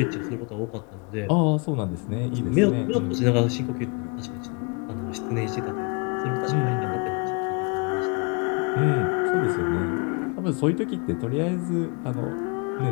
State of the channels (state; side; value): quieter; right; 32.4 dB